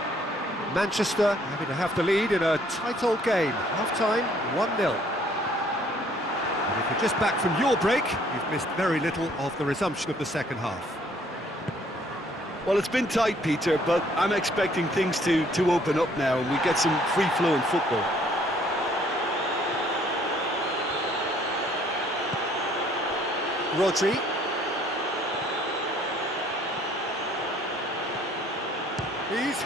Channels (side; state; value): both; normal; correlation 0.61